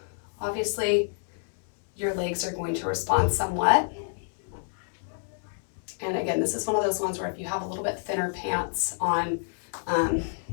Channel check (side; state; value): right; silent; digital silence